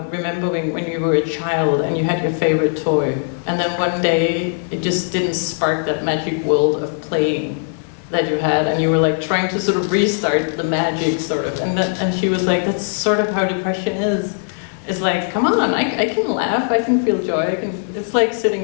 remembering when you were a child and you had your favorite toy, and then one day it just didn't spark that magic world of playing that you had, and you were like trying to sort of restart the magic, sort of. And she was like, that's sort of how depression is. It's like, come on, I can laugh, I can feel joy, it's like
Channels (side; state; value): right; silent; digital silence